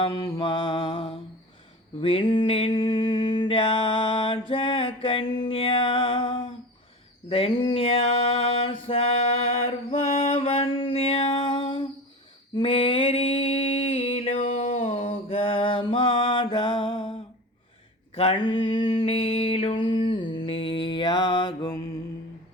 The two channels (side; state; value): both; normal; correlation 0.31